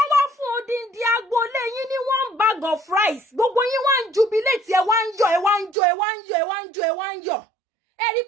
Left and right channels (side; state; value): left; drops out; at 5.8 s